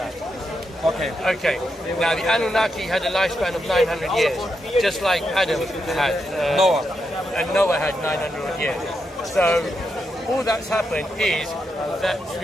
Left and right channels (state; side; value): normal; both; correlation 0.84